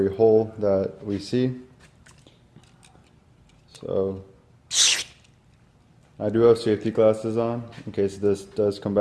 hole that we see. So I do have safety glasses on in case this does come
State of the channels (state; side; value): identical; both; correlation 1.00